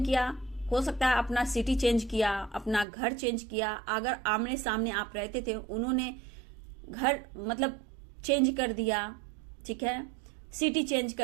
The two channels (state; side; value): drops out; left; at 2.9 s